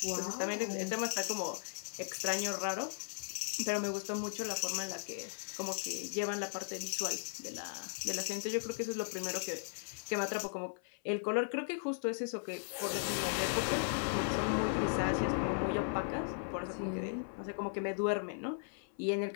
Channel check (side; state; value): right; silent; 53 dB below the other